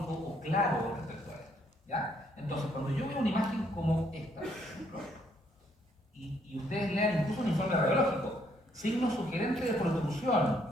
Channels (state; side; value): normal; both; correlation 0.69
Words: o claro respecto a esto. ¿Ya? Entonces, cuando yo veo una imagen como esta, por ejemplo, y ustedes lean incluso un informe radiológico, signo sugerente de protrusión,